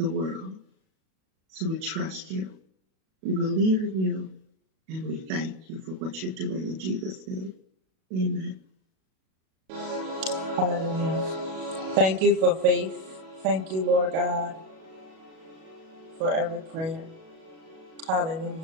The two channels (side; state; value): left; late; 37 ms